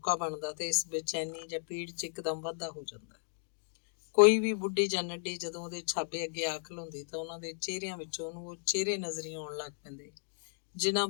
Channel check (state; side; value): silent; right; digital silence